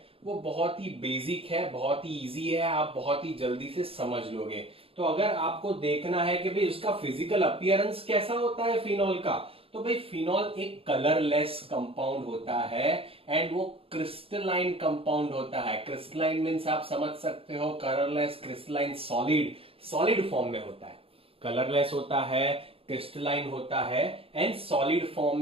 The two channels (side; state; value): left; late; 0.27 ms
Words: वो बहुत ही बेसिक है, बहुत ही इजी है, आप बहुत ही जल्दी से समझ लोगे। तो अगर आपको देखना है कि भाई उसका फिजिकल अपीयरेंस कैसा होता है फिनॉल का, तो भाई फिनॉल एक कलरलेस कंपाउंड होता है एंड वो क्रिस्टलाइन कंपाउंड होता है। क्रिस्टलाइन मीन्स आप समझ सकते हो, colourless, crystalline, solid, solid form में होता है। कलरलेस होता है, क्रिस्टलाइन होता है एंड सॉलिड फॉर्म